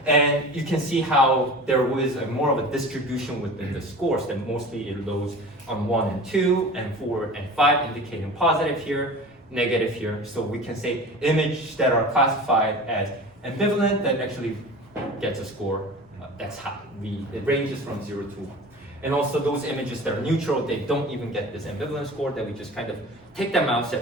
And you can see how there was more of a distribution within the scores, that mostly it loads on 1 and 2, and 4 and 5, indicating positive here, negative here. So we can say images that are classified as ambivalent that actually gets a score that's high. It ranges from 0 to 1. And also those images that are neutral, they don't even get this ambivalence score, that we just kind of take them out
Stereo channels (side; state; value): both; normal; correlation 0.37